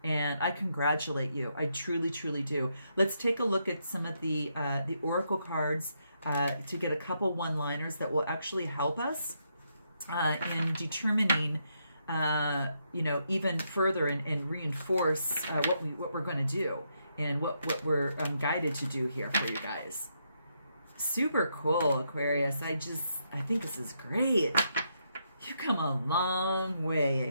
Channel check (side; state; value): both; inverted; correlation -0.78